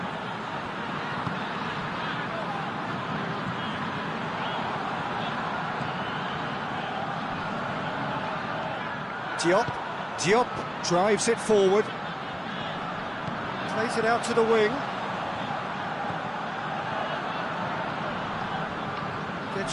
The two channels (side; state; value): both; identical; correlation 1.00